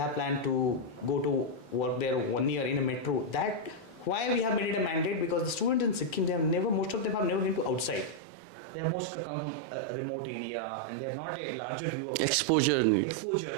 planned to go to work there 1 year in a metro. That why we have made it a mandate, because the students in Sikkim, most of them have never been to outside. They have most come from a remote area and they have not a larger view of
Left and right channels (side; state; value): left; drops out; at 8.2 s